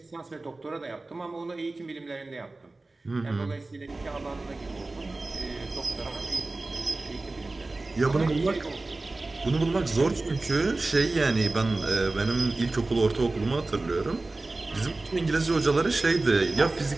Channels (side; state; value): left; quieter; 3.2 dB